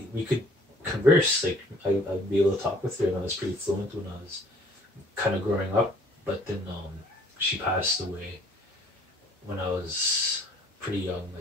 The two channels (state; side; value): normal; both; correlation 0.56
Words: could converse, like I'd be able to talk with her, and I was pretty fluent when I was kind of growing up. But then she passed away when I was pretty young,